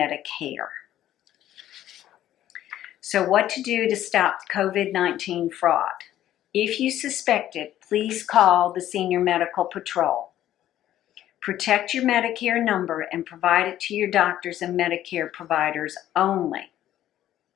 So what to do to stop COVID-19 fraud? If you suspect it, please call the Senior Medical Patrol. Protect your Medicare number and provide it to your doctors and Medicare providers only.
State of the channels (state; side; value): quieter; right; 12.5 dB